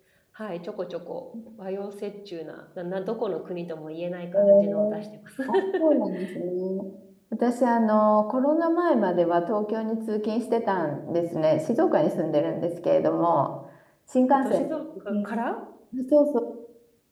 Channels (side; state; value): both; identical; correlation 1.00